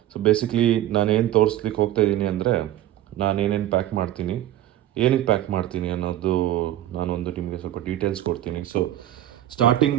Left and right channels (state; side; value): quieter; left; 13.3 dB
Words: ಸೊ ಬೇಸಿಕ್ಲಿ ನಾನೇನು ತೋರಿಸ್ಲಿಕ್ಕೆ ಹೋಗ್ತಾ ಇದ್ದೀನಿ ಅಂದರೆ, ನಾನೇನೇನು ಪ್ಯಾಕ್ ಮಾಡ್ತೀನಿ, ಏನಕ್ಕೆ ಪ್ಯಾಕ್ ಮಾಡ್ತೀನಿ ಅನ್ನೋದು ನಾನೊಂದು ನಿಮಗೆ ಸ್ವಲ್ಪ ಡೀಟೇಲ್ಸ್ ಕೊಡ್ತೀನಿ. ಸೊ ಸ್ಟಾರ್ಟಿಂಗ್